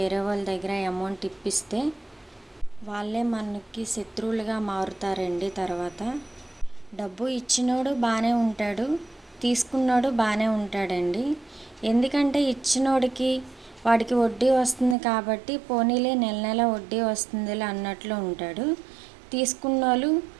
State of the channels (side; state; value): left; drops out; at 15.0 s